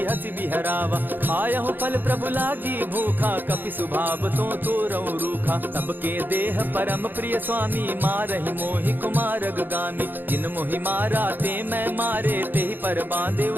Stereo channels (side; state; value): left; late; 0.090 ms